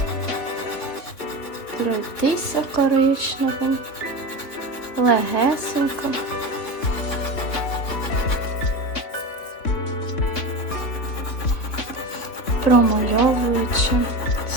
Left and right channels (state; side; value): late; right; 3.7 ms